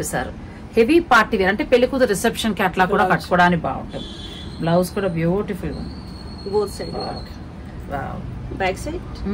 హెవీ పార్టీ వేర్ అంటే పెళ్లి కూతురు రిసెప్షన్ కి అట్లా కూడా కట్టుకోవడానికి బాగుంటుంది. బ్లౌజ్ కూడా బ్యూటిఫుల్ గా ఉంది.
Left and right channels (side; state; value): both; identical; correlation 1.00